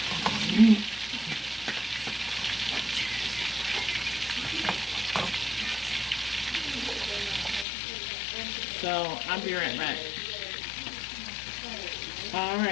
so I'll be right back. All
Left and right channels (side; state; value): right; drops out; at 7.7 s